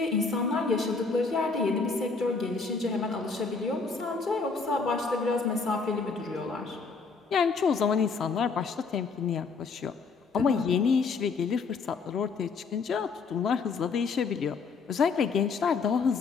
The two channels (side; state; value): right; quieter; 4.8 dB